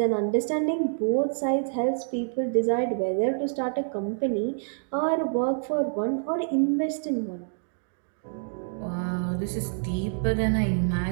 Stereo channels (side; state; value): left; silent; digital silence